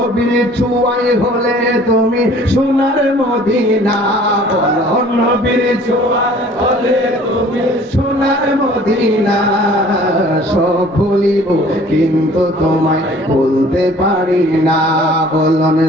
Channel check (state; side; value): normal; both; correlation 0.52